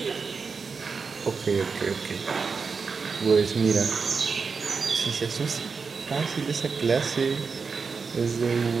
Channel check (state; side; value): quieter; left; 5.1 dB